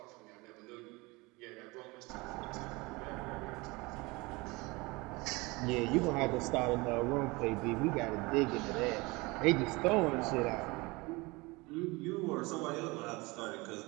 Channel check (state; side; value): quieter; left; 24.2 dB